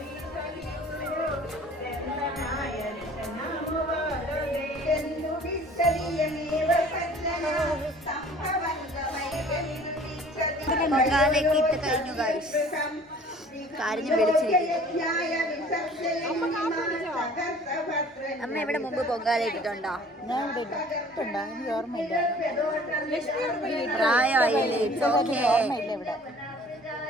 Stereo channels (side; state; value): both; normal; correlation 0.50